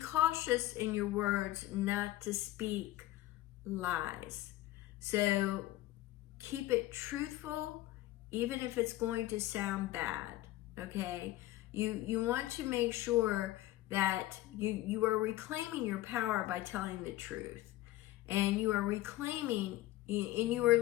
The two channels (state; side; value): quieter; right; 16.1 dB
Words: in your words not to speak lies. So keep it truthful, even if it's going to sound bad, okay? You want to make sure that you are reclaiming your power by telling the truth. And you are reclaiming, and you are